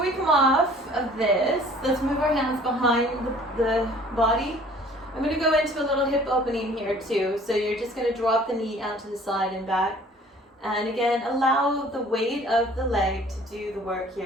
we come off of this, let's move our hands behind the body. I'm going to go into a little hip opening here too. So you're just going to drop the knee out to the side and back. And again, allow the weight of the leg to do the work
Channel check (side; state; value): both; normal; correlation 0.52